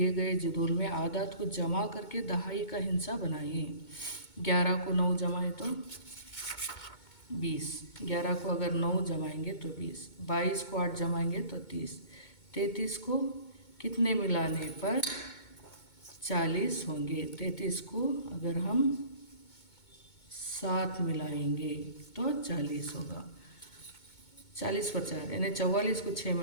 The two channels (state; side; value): late; right; 2.2 ms